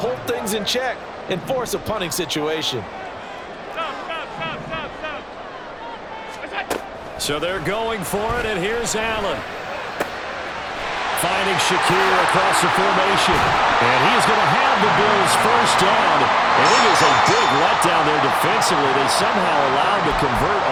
things in check and force a punting situation. So they're going for it, and here's Allen. Finding Shakir across the formation. And he is going to have the Bills' 1st down. And it is a big letdown there defensively. They somehow allowed to convert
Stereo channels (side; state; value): both; identical; correlation 1.00